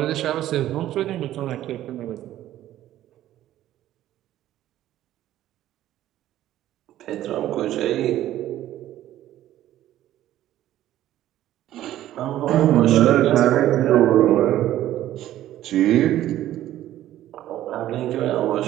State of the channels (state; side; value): quieter; left; 13.3 dB